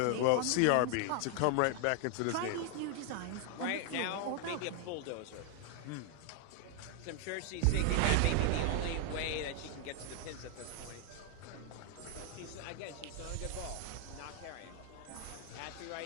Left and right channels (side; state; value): both; different; correlation 0.00